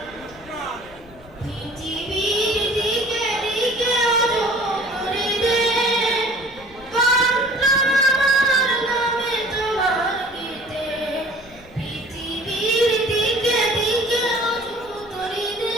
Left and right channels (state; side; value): noise; left; rumble, 24 dB below the sound